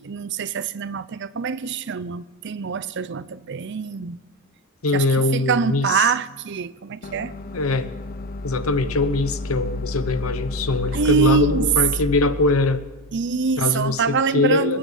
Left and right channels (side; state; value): both; normal; correlation 0.16